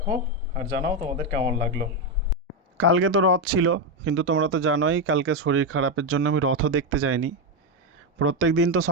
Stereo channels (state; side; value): normal; both; correlation 0.07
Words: আর জানাও তোমাদের কেমন লাগলো। কালকে তো রথ ছিল, কিন্তু তোমরা তো জানোই কালকে শরীর খারাপের জন্য আমি রথও দেখতে যাইনি। প্রত্যেক দিন তো